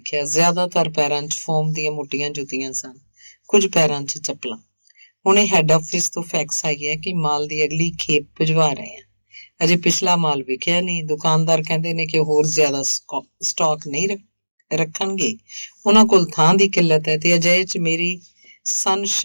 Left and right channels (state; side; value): inverted; both; correlation -1.00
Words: ਜ਼ਿਆਦਾਤਰ ਪੈਰਾਂ 'ਚ ਫੋਮ ਦੀਆਂ ਮੋਟੀਆਂ ਜੁੱਤੀਆਂ ਸਨ, ਕੁਝ ਪੈਰਾਂ 'ਚ ਚੱਪਲਾਂ। ਹੁਣੇ ਹੈੱਡ ਆਫਿਸ ਤੋਂ ਫੈਕਸ ਆਈ ਹੈ ਕਿ ਮਾਲ ਦੀ ਅਗਲੀ ਖੇਪ ਭਿਜਵਾ ਰਹੇ ਆ। ਅਜੇ ਪਿਛਲਾ ਮਾਲ ਵਿਕਿਆ ਨਹੀਂ। ਦੁਕਾਨਦਾਰ ਕਹਿੰਦੇ ਨੇ ਕਿ ਹੋਰ ਜ਼ਿਆਦਾ ਸਟਾਕ ਨਹੀਂ ਰੱਖਣਗੇ। ਉਹਨਾਂ ਕੋਲ ਥਾਂ ਦੀ ਕਿੱਲਤ ਹੈ ਤੇ ਅਜਿਹੇ 'ਚ ਮੇਰੀ